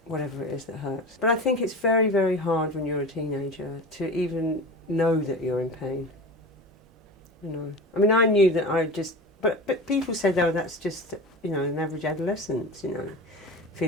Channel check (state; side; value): normal; both; correlation 0.31